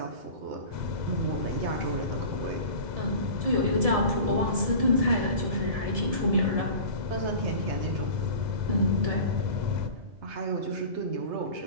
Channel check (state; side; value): late; left; 1.7 ms